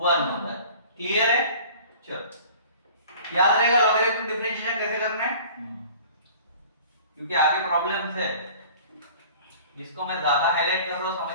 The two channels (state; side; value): inverted; both; correlation -0.46